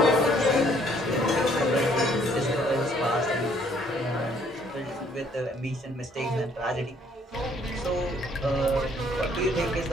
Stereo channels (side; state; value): both; normal; correlation 0.63